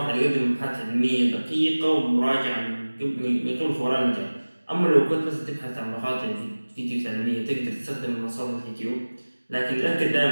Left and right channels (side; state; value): both; inverted; correlation -1.00